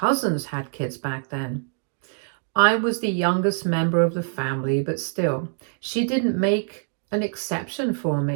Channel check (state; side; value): silent; left; digital silence